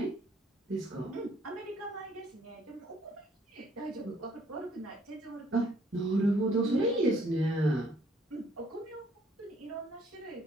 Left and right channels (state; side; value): normal; both; correlation 0.64